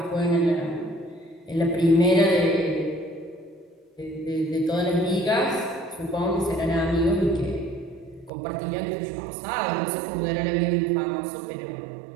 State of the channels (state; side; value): drops out; left; at 8.3 s